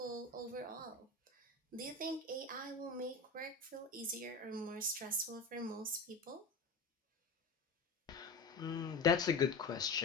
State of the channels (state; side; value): quieter; right; 3.5 dB